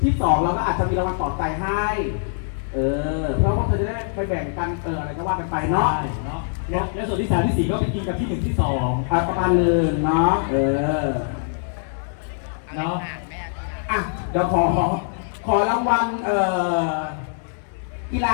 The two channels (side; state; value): right; silent; 59 dB below the other